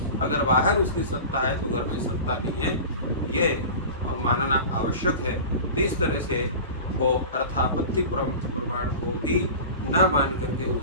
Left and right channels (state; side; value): inverted; both; correlation -0.34